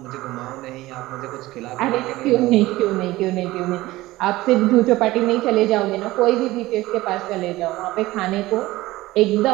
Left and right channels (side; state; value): left; quieter; 18.1 dB